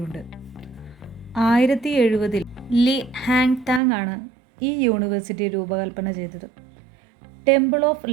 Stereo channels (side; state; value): left; drops out; at 3.8 s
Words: 1970 ലി ഹാങ് താങ് ആണ് ഈ യൂണിവേഴ്സിറ്റി രൂപകൽപ്പന ചെയ്തത്. ടെമ്പിൾ ഓഫ്